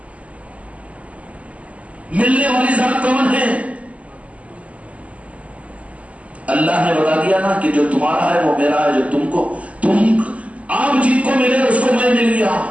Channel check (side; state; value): left; late; 0.067 ms